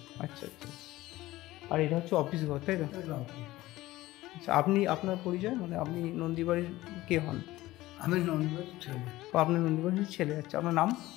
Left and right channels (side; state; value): right; quieter; 17.2 dB